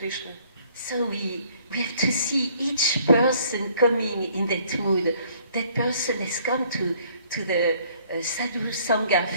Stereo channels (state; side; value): inverted; both; correlation -0.61